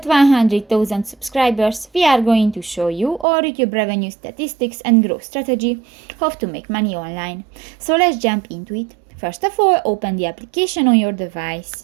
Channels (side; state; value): left; drops out; at 3.2 s